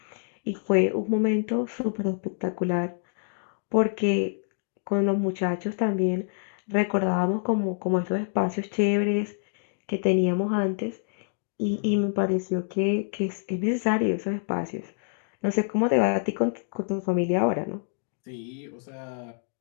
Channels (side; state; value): right; silent; digital silence